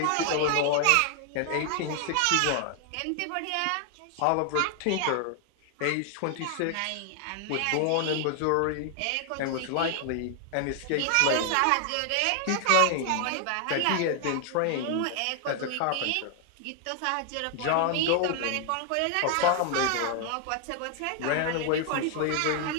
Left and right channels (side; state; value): both; different; correlation 0.00